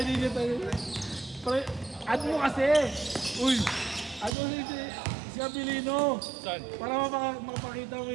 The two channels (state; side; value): drops out; left; at 4.3 s